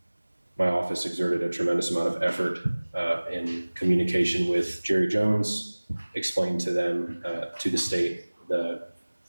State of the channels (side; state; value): both; inverted; correlation -1.00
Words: My office exerted a tremendous amount of effort in communication with Jerry Jones, explained to them, to the state, the